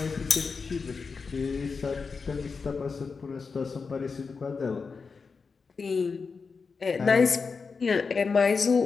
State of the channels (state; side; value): quieter; right; 5.0 dB